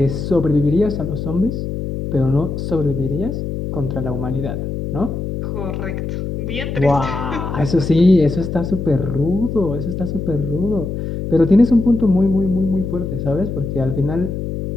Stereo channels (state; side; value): noise; left; hum, 4 dB below the sound